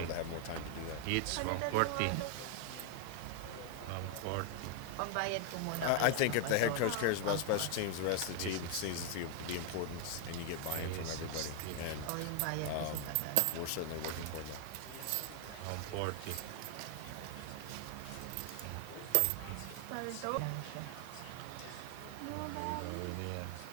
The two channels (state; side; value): different; both; correlation 0.00